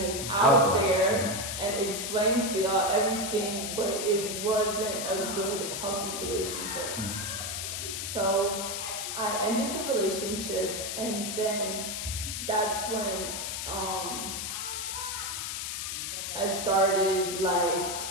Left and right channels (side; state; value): left; noise; hiss, 4 dB below the sound